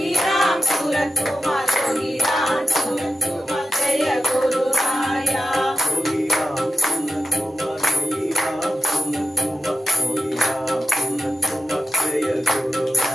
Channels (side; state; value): both; normal; correlation 0.90